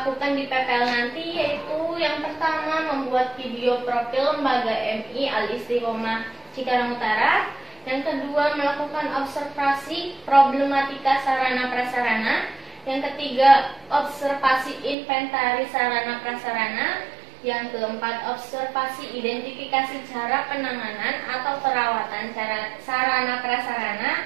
di PPL nanti, yaitu yang pertama membuat video profil lembaga MI Al-Istiqomah Cikarang Utara, yang kedua melakukan observasi problematika sarana prasarana, yang ketiga observasi inventaris sarana prasarana, yang keempat observasi identifikasi cara penanganan atau perawatan sarana prasarana,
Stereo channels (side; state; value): left; drops out; at 15.0 s